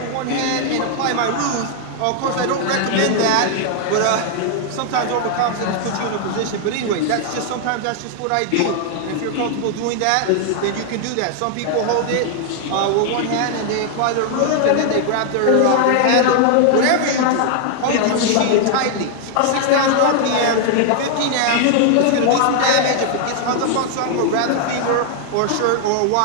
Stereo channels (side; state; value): both; different; correlation 0.00